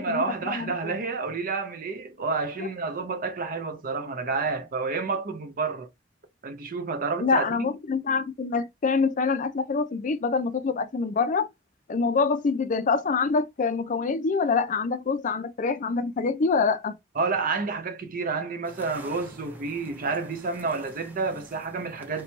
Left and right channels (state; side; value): normal; both; correlation -0.01